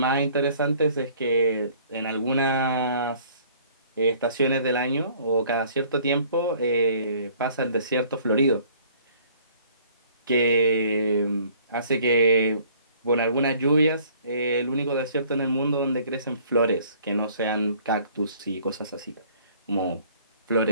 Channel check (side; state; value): both; inverted; correlation -0.56